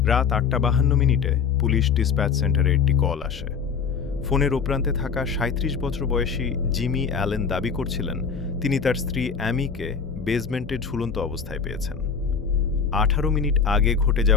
8:52 পুলিশ ডিসপ্যাচ সেন্টারে একটি কল আসে। ফোনের ওপ্রান্তে থাকা 37 বছর বয়সী জিমি অ্যালেন দাবি করছিলেন তিনি তার স্ত্রী অ্যামিকে বেসমেন্টে ঝুলন্ত অবস্থায় পেয়েছেন। 18 মিনিট আগে ঘটে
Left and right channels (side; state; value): right; quieter; 6.0 dB